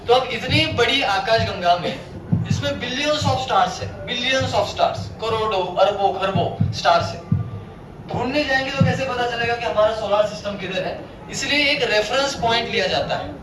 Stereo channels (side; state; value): both; identical; correlation 1.00